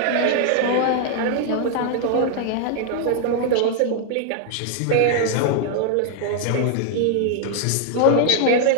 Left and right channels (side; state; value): both; different; correlation 0.00